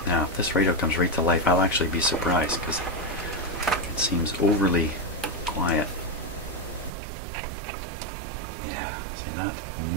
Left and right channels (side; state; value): left; drops out; at 6.9 s